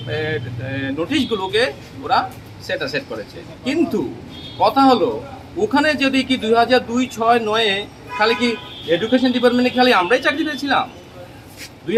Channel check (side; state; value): both; identical; correlation 1.00